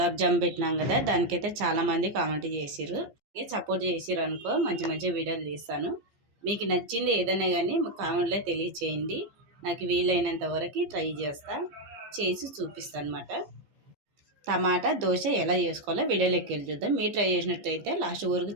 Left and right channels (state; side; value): late; left; 15 ms